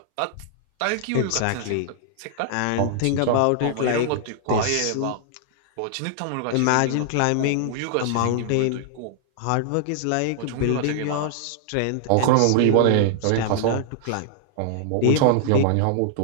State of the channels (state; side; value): different; both; correlation -0.01